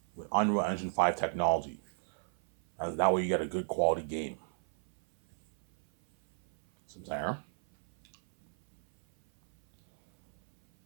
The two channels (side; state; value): left; silent; 57 dB below the other